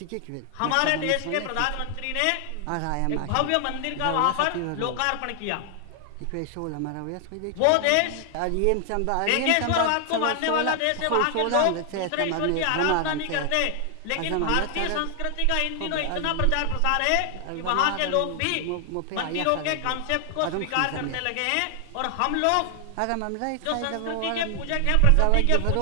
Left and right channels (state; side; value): different; both; correlation 0.00